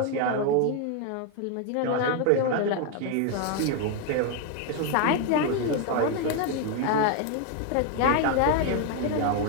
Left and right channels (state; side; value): different; both; correlation 0.00